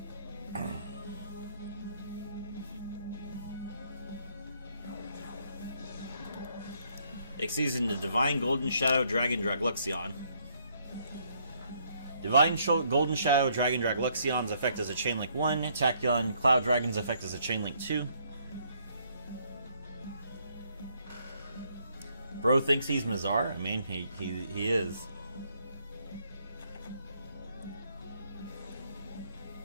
Exceeds into Divine Golden Shadow Dragon Dragluxion. Divine Golden Shadow Dragon Dragluxion's effect is a Chainlink 1. Tachyon Cloud Dragon's effect is a Chainlink 2. Bro thinks he's Mazar. I mean, he is.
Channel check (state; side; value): inverted; both; correlation -0.69